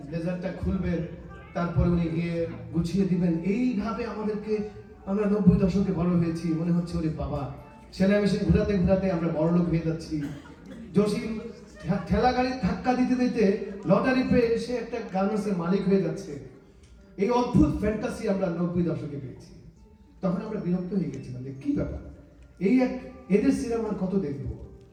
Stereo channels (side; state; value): both; identical; correlation 1.00